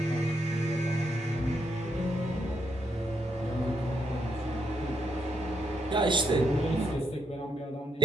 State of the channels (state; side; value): normal; both; correlation 0.77